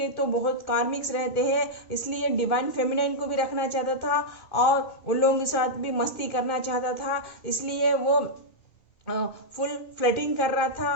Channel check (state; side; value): late; right; 2.2 ms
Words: तो बहुत कार्मिक्स रहते हैं, इसलिए डिवाइन फेमिनाइन को भी रखना चाहता था और उन लोगों के साथ भी मस्ती करना चाहता था। इसलिए वो फुल फ्लर्टिंग कर रहा